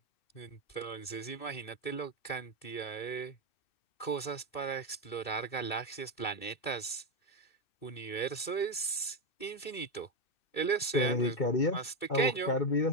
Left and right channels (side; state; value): right; late; 2.6 ms